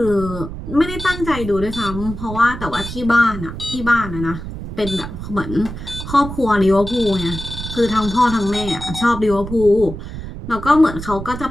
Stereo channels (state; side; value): noise; right; rumble, 9 dB below the sound